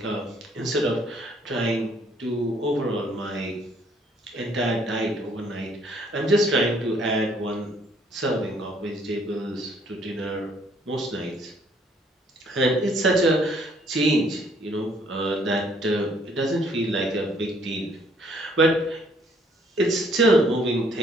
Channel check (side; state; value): both; normal; correlation 0.64